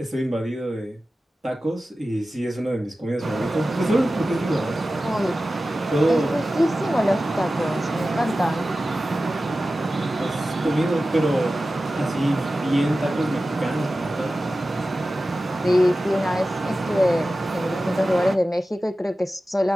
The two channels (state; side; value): normal; both; correlation 0.94